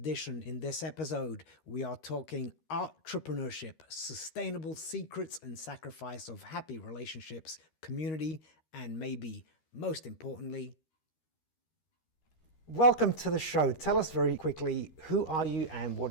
In this episode, we are talking ARTrepreneurship, sustainable secrets and sacrifice of happy relationships, community, and maybe most importantly, welcome to the show. Tell us very quickly, who are you and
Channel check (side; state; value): right; late; 13 ms